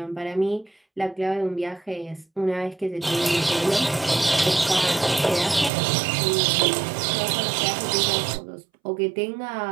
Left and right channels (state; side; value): drops out; left; at 5.7 s